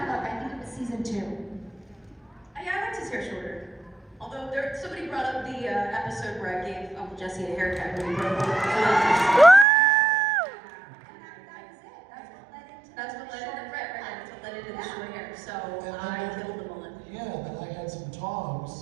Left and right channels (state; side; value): drops out; left; at 9.7 s